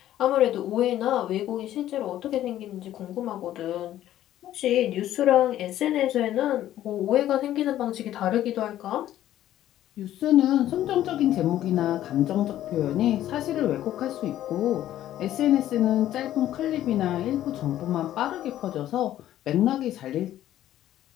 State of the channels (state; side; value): quieter; right; 12.7 dB